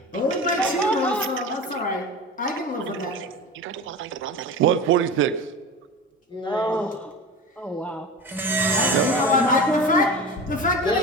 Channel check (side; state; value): both; normal; correlation 0.31